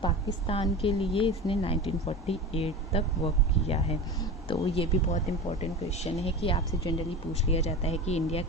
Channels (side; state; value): both; normal; correlation 0.29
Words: पाकिस्तान के लिए इसने 1948 तक वर्क किया है। तो ये भी बहुत इंपॉर्टेंट क्वेश्चन है कि आपसे जनरली पूछ लिया जाता है कि इंडिया